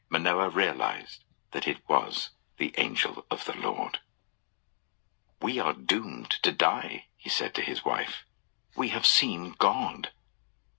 Manoah realized that it was the angel of the Lord. "We are doomed to die," he said to his wife. "We have seen God."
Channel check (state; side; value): silent; right; digital silence